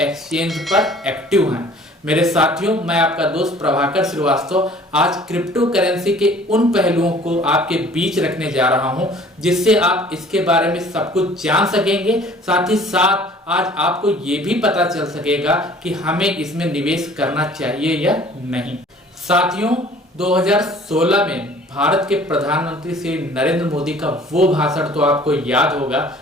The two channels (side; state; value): both; normal; correlation 0.51